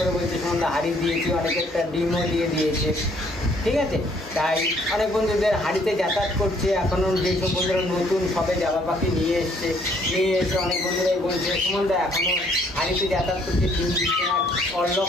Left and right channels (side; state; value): both; normal; correlation 0.64